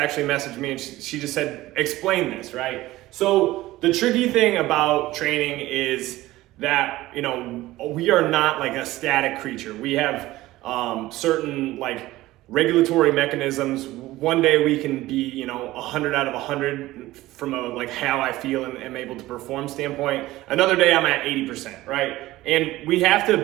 messaged me and she just said, explain this, right? So the tricky thing about training is that, we are not like a static creature. We have certain like regulatory mechanisms. One day we can be 100 out of 100 from a like how I feel and am able to perform standpoint. Another day I'm at 80%, right? And we have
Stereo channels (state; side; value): quieter; left; 17.2 dB